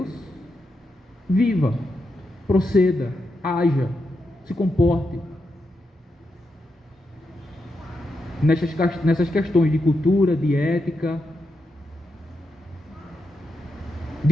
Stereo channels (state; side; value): normal; both; correlation 0.85